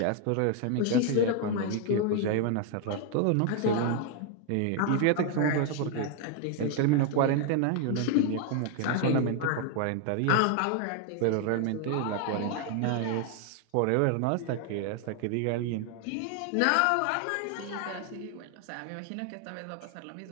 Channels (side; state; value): both; different; correlation 0.00